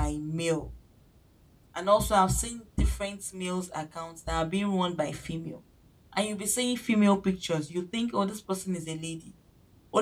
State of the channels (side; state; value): both; identical; correlation 1.00